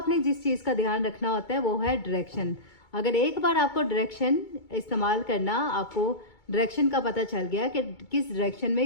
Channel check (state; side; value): late; right; 2.3 ms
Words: जिस चीज़ का ध्यान रखना होता है वो है डायरेक्शन। अगर एक बार आपको डायरेक्शन इस्तेमाल करना, आपको डायरेक्शन का पता चल गया कि किस डायरेक्शन में